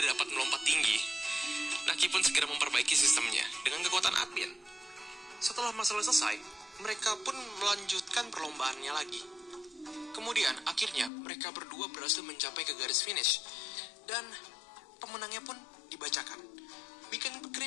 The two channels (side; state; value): right; drops out; at 11.1 s